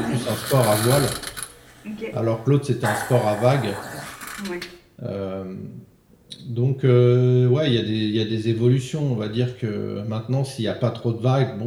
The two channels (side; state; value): both; identical; correlation 1.00